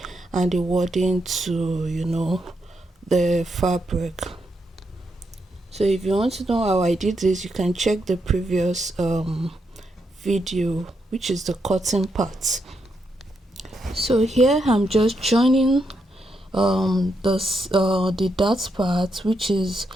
and the wording to the fabric. So if you want to know how I did this, you can check the previous video, which is the cutting part. So here I'm just joining the dot part, which is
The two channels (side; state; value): both; normal; correlation 0.81